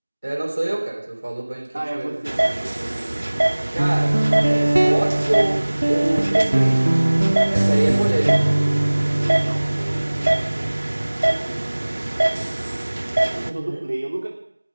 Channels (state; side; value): inverted; both; correlation -1.00